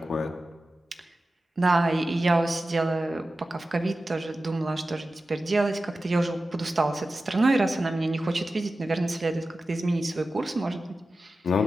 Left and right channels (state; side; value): normal; both; correlation 0.94